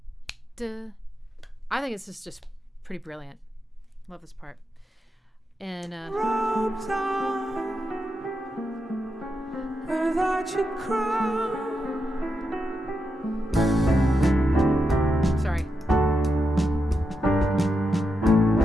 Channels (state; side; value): normal; both; correlation 0.86